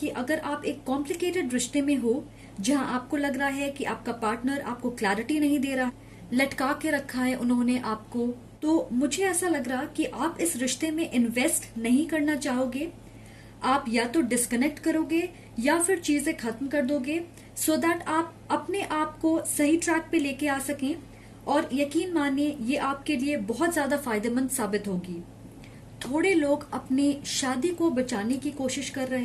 अगर आप एक कॉम्प्लिकेटेड रिश्ते में हो जहां आपको लग रहा है कि आपका पार्टनर आपको क्लैरिटी नहीं दे रहा, लटका के रखा है उन्होंने आपको, तो मुझे ऐसा लग रहा कि आप इस रिश्ते में इन्वेस्ट नहीं करना चाहोगे। आप या तो डिस्कनेक्ट करोगे या फिर चीजें खत्म कर दोगे, सो दैट आप अपने आप को सही ट्रैक पे लेके आ सकें। और यकीन मानिए ये आपके लिए बहुत ज्यादा फायदेमंद साबित होगी। थोड़े लोग अपनी शादी को बचाने की कोशिश कर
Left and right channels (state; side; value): identical; both; correlation 1.00